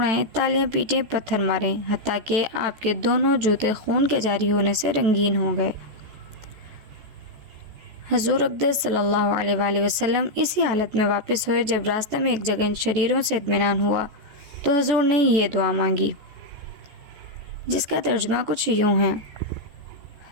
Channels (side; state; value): left; late; 14 ms